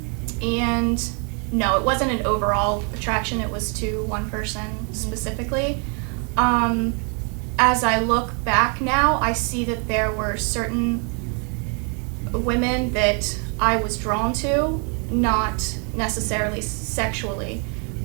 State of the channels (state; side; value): quieter; left; 37.1 dB